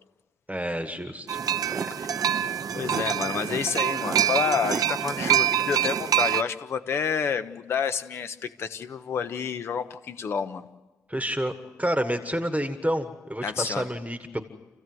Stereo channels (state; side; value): normal; both; correlation 0.36